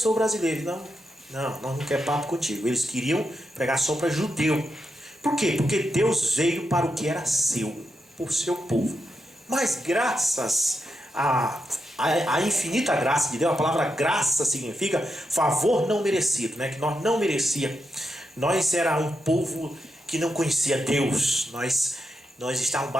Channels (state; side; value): normal; both; correlation 0.85